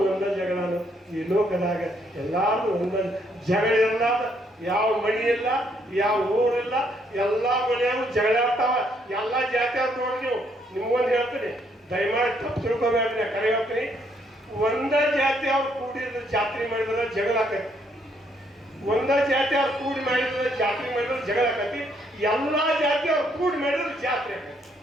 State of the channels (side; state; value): both; normal; correlation 0.71